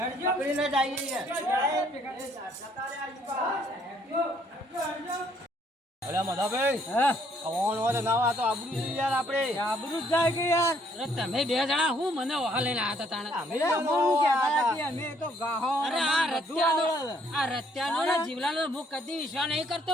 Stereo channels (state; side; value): normal; both; correlation 0.66